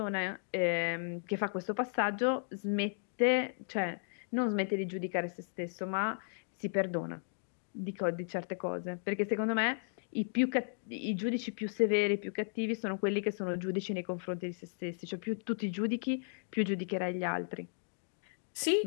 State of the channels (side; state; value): right; silent; digital silence